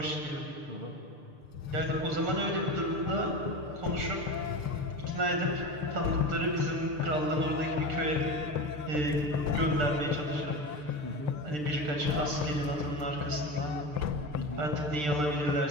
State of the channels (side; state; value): left; late; 6.7 ms